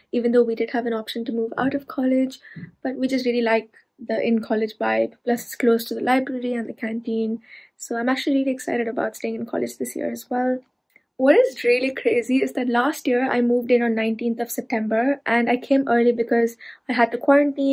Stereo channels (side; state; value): both; identical; correlation 1.00